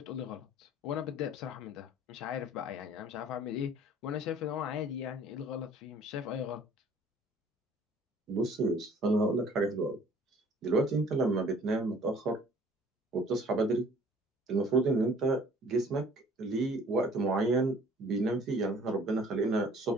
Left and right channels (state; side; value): normal; both; correlation 0.53